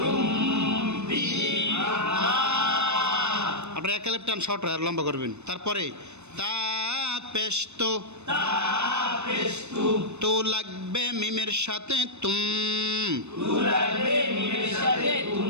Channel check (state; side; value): late; left; 0.82 ms